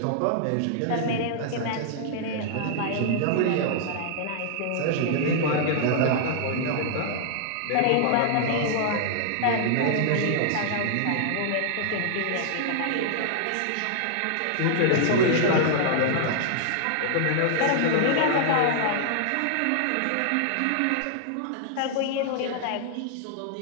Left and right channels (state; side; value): different; both; correlation -0.01